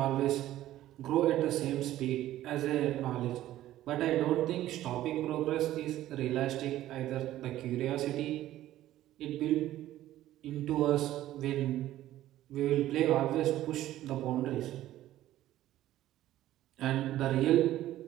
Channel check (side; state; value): left; quieter; 14.0 dB